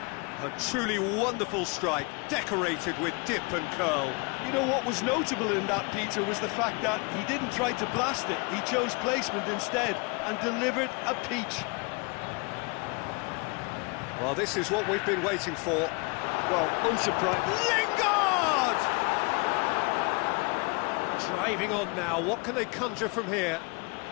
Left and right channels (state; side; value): quieter; right; 30.6 dB